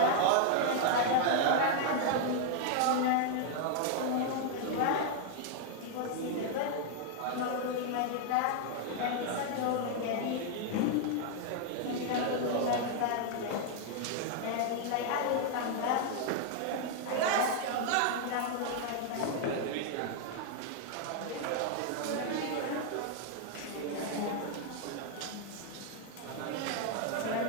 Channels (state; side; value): different; both; correlation 0.00